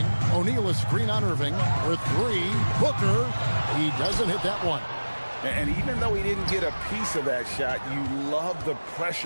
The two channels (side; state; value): both; inverted; correlation -1.00